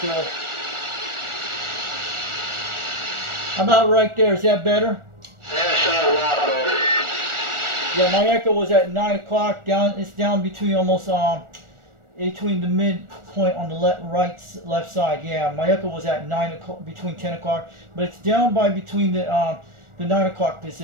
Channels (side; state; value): left; late; 1.4 ms